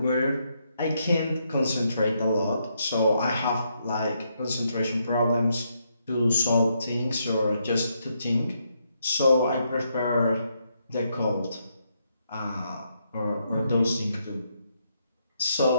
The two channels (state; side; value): inverted; both; correlation -0.77